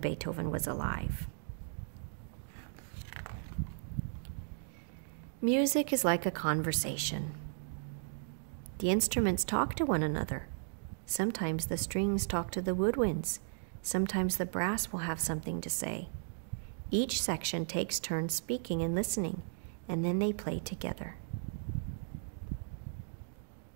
was alive. Music is like a conversation. The instruments talk to one another. Sometimes the strings talk to the woodwinds. Sometimes the brass will have something to say. Each section takes turns speaking and listening, and then they play together.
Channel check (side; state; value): left; silent; digital silence